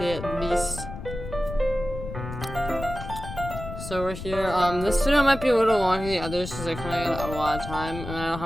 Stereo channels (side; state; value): left; noise; rumble, 9 dB below the sound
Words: at least. So we're here. This video might be a little longer than the others because I kind of got a lot of time and I don't